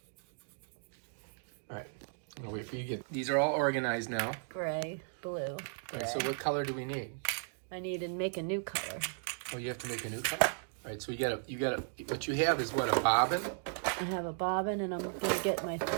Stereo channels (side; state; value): left; silent; digital silence